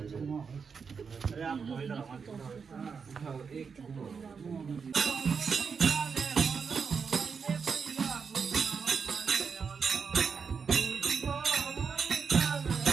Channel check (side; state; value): left; quieter; 5.8 dB